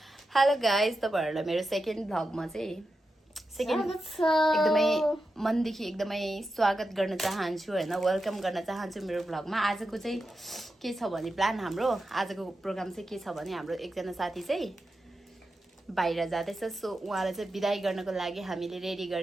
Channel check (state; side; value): normal; both; correlation 0.89